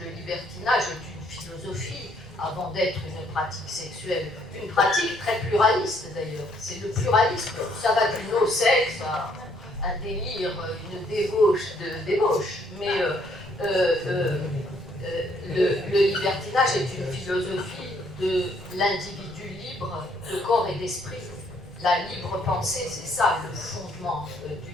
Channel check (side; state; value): both; normal; correlation 0.67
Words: Le libertinage est une philosophie avant d'être une pratique sexuelle. Une pratique très pluraliste d'ailleurs. C'est le pluralisme. Ça va du no-sexe à un délire, une débauche de débauche. Mais le libertinage est une philosophie de l'individu libre de corps et d'esprit. La libre pensée, c'est ça le fondement du